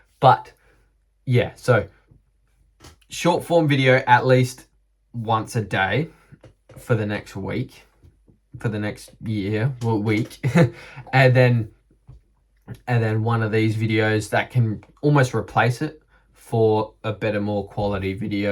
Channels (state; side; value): identical; both; correlation 1.00